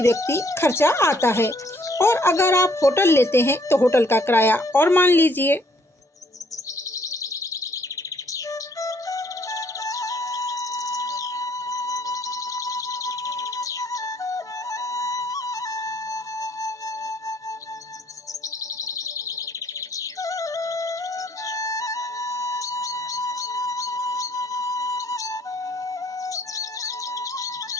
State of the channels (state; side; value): normal; both; correlation 0.65